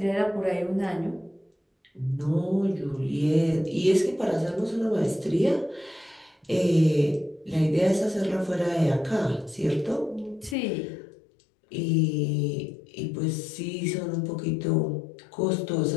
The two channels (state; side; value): drops out; right; at 10.6 s